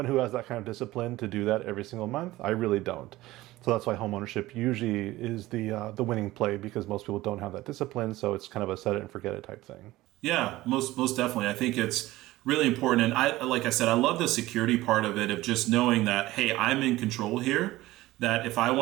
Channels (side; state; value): left; quieter; 17.5 dB